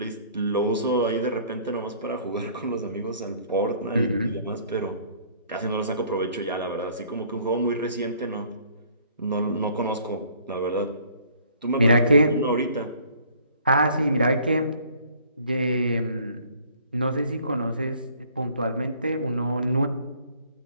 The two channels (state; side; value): inverted; both; correlation -0.57